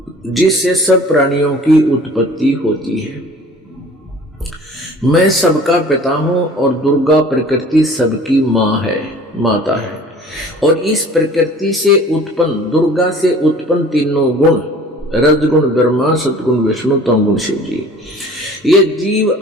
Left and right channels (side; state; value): both; normal; correlation 0.47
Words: जिससे सब प्राणियों की उत्पत्ति होती है। मैं सबका पिता हूं और दुर्गा प्रकृति सबकी मां है, माता है। और इस प्रकृति से उत्पन्न, दुर्गा से उत्पन्न तीनों गुण, रजगुण ब्रह्मा, सतगुण विष्णु, तमगुण शिव जी, ये जीव